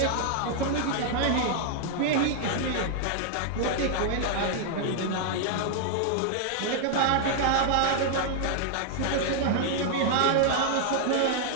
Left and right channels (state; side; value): different; both; correlation 0.00